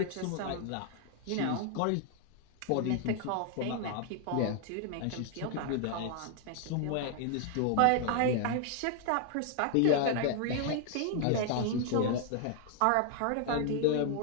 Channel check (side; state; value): both; different; correlation 0.00